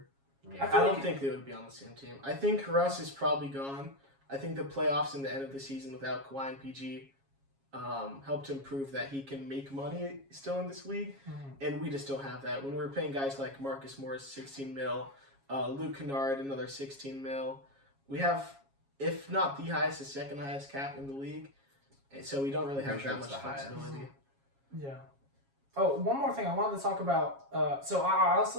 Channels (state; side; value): late; left; 7.3 ms